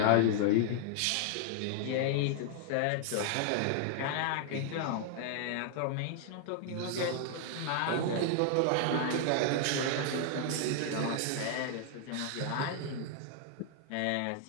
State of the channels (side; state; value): both; different; correlation 0.00